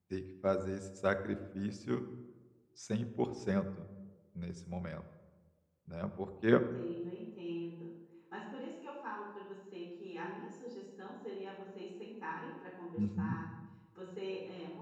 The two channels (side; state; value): both; identical; correlation 1.00